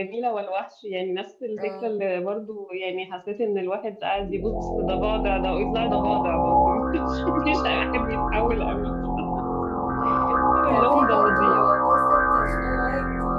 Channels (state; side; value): identical; both; correlation 1.00